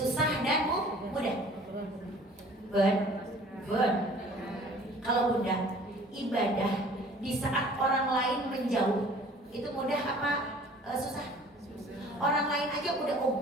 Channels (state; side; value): normal; both; correlation 0.50